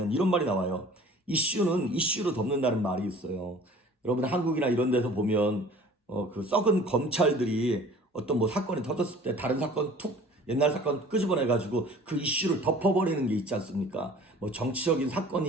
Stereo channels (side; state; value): both; normal; correlation 0.47